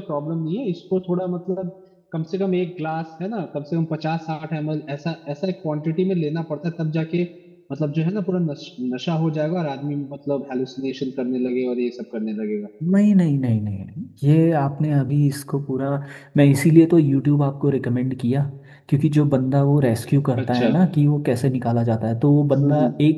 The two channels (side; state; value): both; identical; correlation 1.00